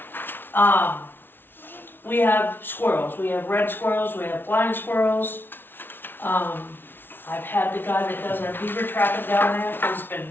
we have squirrels, we have red squirrels, we have blind squirrels. I've had the guy that does our beaver trapping down there,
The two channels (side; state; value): right; late; 0.10 ms